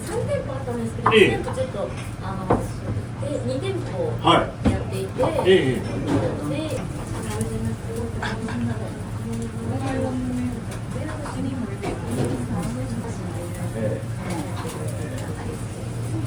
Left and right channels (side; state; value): both; identical; correlation 1.00